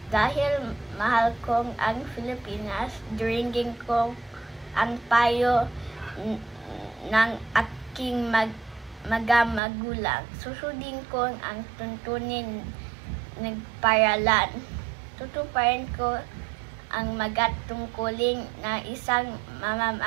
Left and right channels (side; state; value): left; drops out; at 9.6 s